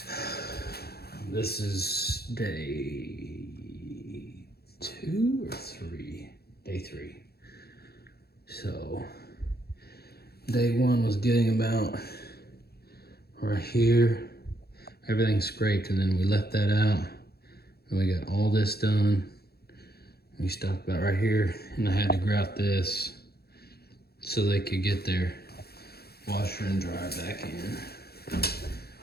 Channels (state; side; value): late; right; 0.46 ms